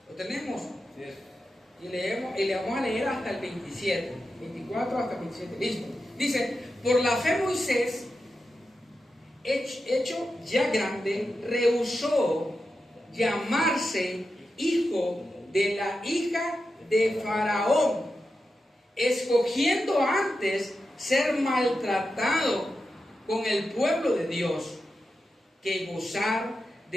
Lo tenemos. Y le vamos a leer hasta el 27. 24 hasta el 27. Listo. Dice, por la fe Moisés, hecho ya grande, rehusó llamarse hijo de la hija de Faraón, escogiendo antes ser maltratado con el pueblo de Dios que gozar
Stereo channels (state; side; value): normal; both; correlation 0.90